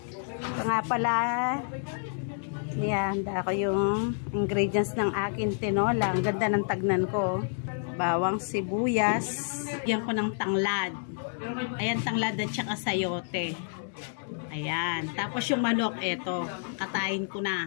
Ito nga pala. Yan, ako yung ingredients ng akin tinola. Ang ganda ng tagnan ko. Bawang sibuyas. Yan ko ng tanglad. Ayan, tanglad at saka sayote. Ayan. Tapos yung manok, eto. Katayin ko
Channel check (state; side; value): silent; right; digital silence